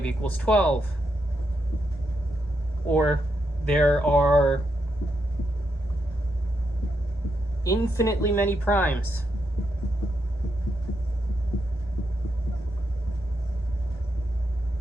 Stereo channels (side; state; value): both; normal; correlation 0.82